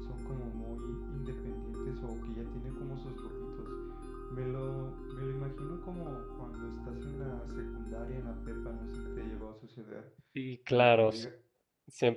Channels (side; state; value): both; identical; correlation 1.00